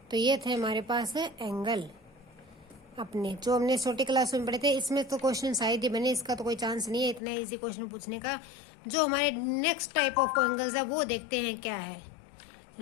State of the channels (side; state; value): right; drops out; at 7.2 s